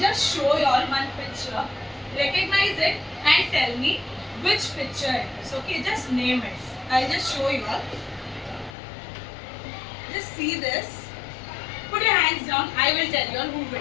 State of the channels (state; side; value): drops out; right; at 8.8 s